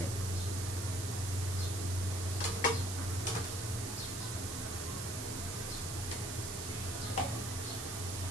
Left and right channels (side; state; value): right; noise; hiss, 5 dB below the sound